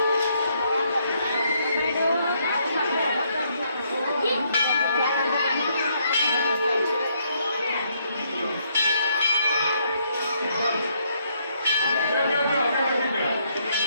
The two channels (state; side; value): inverted; both; correlation -0.72